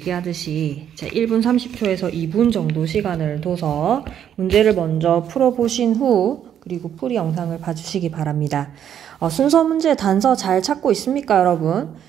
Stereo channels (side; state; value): left; quieter; 9.5 dB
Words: 1분 30초에서 2분 정도 시간을 둬서 문제를 먼저 풀어보신 후 그리고 풀이 영상을 봐주시기 바랍니다. 순서 문제 단서 잘 찾고 있습니까, 여러분?